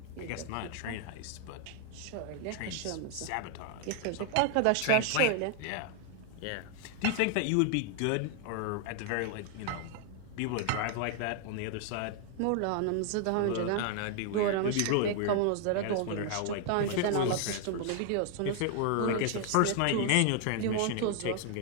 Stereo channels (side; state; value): both; different; correlation 0.00